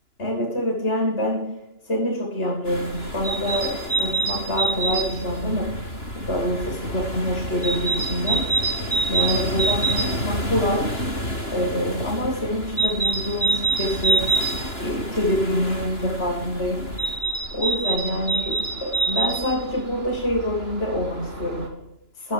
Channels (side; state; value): right; late; 2.9 ms